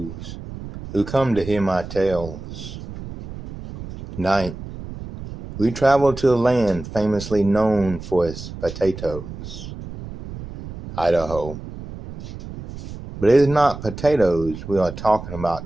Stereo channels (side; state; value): right; noise; rumble, 11 dB below the sound